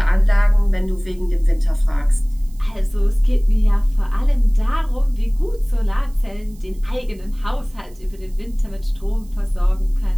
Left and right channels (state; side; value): noise; right; hiss, 28 dB below the sound